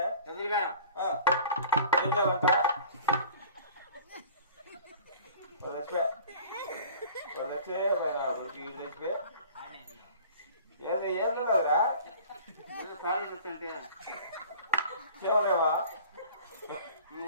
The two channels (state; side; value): inverted; both; correlation -0.45